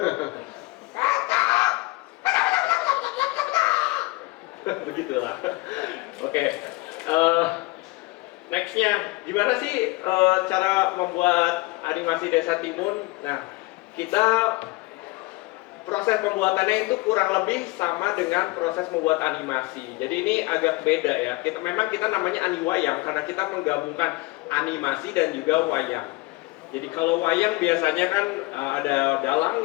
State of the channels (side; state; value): right; quieter; 22.4 dB